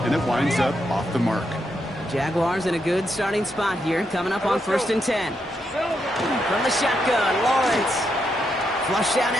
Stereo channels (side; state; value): both; normal; correlation 0.81